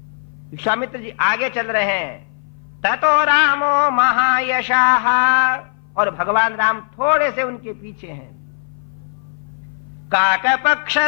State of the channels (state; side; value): silent; right; 60 dB below the other